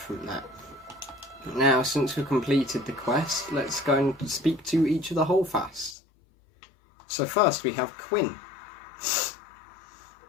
that. Now, since we've completed the quest, let's go and speak to each of the Holdfasts. So first, we have Quinn.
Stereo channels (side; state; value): right; drops out; at 6.0 s